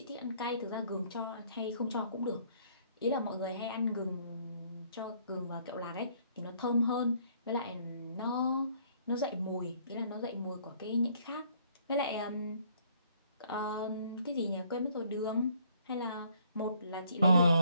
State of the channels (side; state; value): both; inverted; correlation -0.63